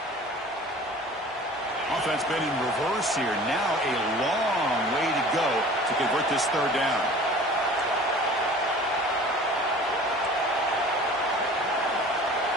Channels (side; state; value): both; normal; correlation 0.44